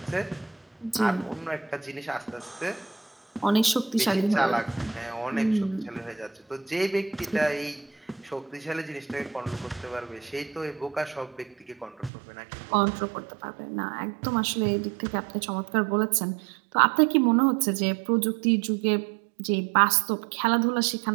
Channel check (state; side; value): drops out; left; at 12.1 s